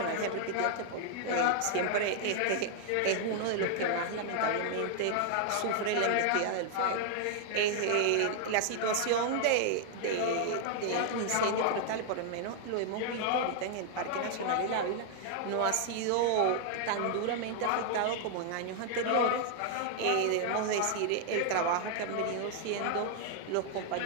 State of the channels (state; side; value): different; both; correlation 0.00